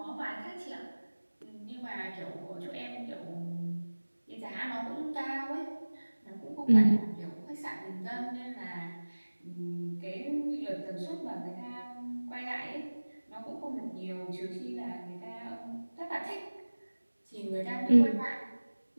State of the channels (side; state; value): both; inverted; correlation -1.00